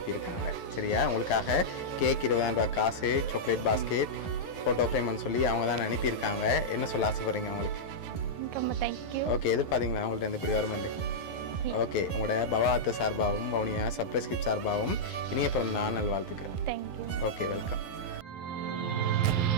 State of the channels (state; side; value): late; right; 11 ms